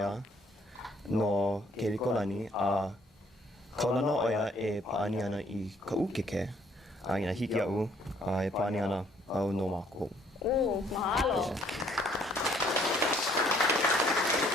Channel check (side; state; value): both; normal; correlation 0.63